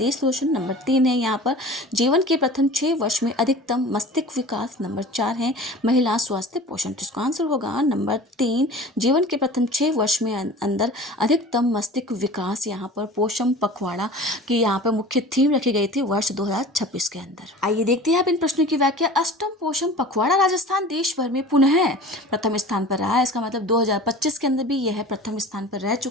रोशन, नंबर 3 है यहाँ पर जीवन के प्रथम 6 वर्ष में अधिकतम मस्तिष्क विकास, नंबर 4 है महिला स्वास्थ्य पोषण। तो इसका आंसर होगा नंबर 3, जीवन के प्रथम 6 वर्ष में अंदर अधिकतम मस्तिष्क विकास यहाँ पर पोषण पखवाड़ा की यहाँ पर मुख्य थीम रखी गई थी वर्ष 2026 के अंदर। आइए देखते हैं आप इन प्रश्नों की व्याख्या। अष्टम पोषण पखवाड़ा राजस्थान देश भर में पुनः प्रथम स्थान पर रहा है। इसका मतलब 2025 के अंदर भी यह प्रथम स्थान पर रह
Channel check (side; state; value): both; normal; correlation 0.39